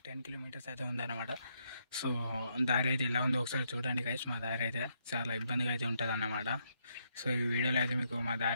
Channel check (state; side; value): inverted; both; correlation -0.76